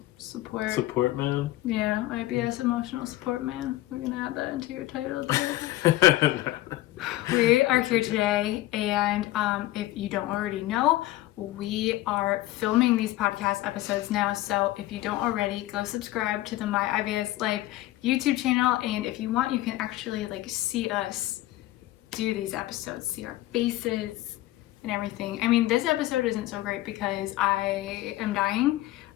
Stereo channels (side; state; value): right; quieter; 16.5 dB